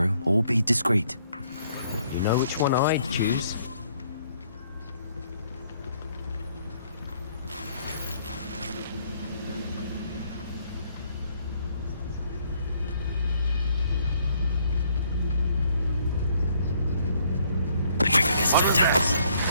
or be discreet. You know which one I'd choose.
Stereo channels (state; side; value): inverted; both; correlation -0.66